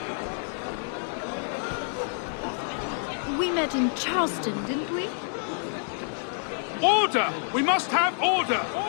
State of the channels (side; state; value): right; silent; digital silence